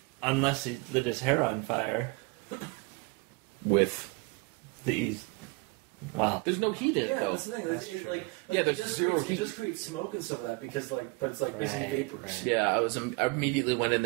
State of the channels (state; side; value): quieter; left; 27.6 dB